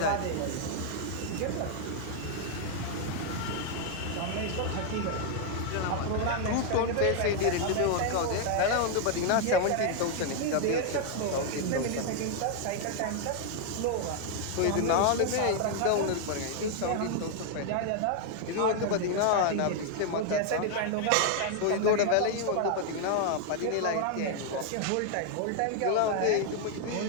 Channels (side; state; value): both; different; correlation 0.00